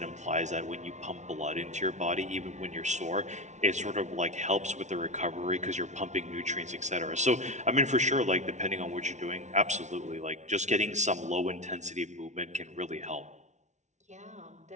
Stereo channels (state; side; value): late; left; 0.34 ms